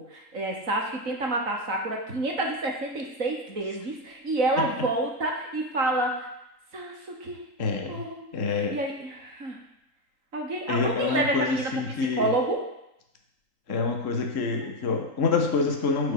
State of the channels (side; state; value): left; late; 3.8 ms